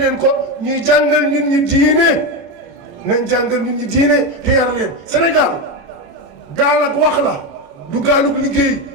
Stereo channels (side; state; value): left; late; 35 ms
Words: ko ñuy jàngal nit ñi diine nañ jàngal nit ñi diine te yar leen Sénégal gaal ak wax la du gaalug liggéey